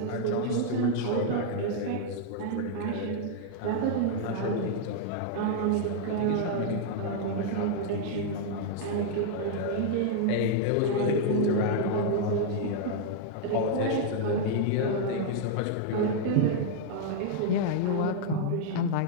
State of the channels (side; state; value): both; different; correlation -0.01